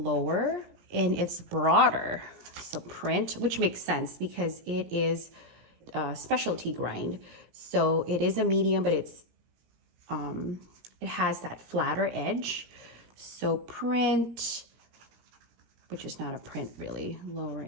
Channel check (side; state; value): left; late; 17 ms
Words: and it's broader. So print, which makes sense because it is a specialty grind. So it is a medium, but it has that flatter edge. So print, which is not a print really, lower